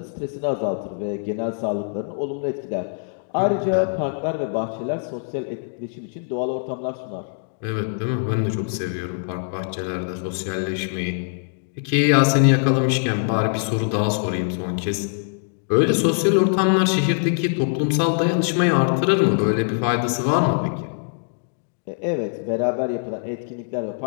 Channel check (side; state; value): right; silent; digital silence